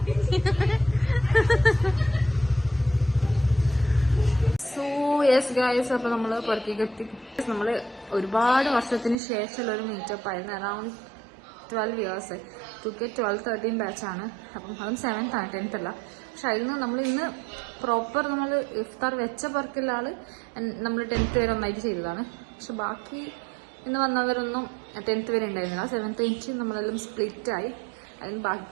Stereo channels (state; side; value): drops out; left; at 9.2 s